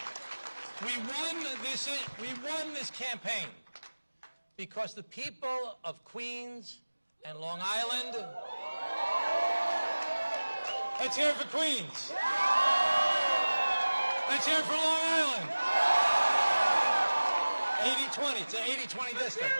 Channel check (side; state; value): both; inverted; correlation -1.00